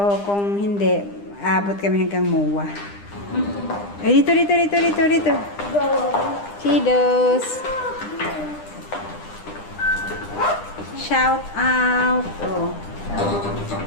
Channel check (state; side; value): late; right; 9.9 ms